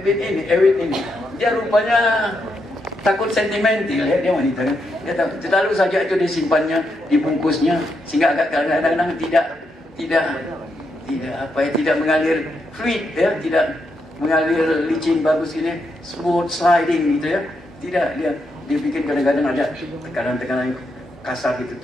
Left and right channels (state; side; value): normal; both; correlation 0.82